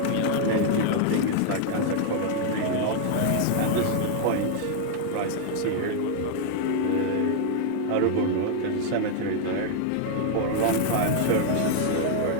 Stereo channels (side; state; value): both; different; correlation 0.00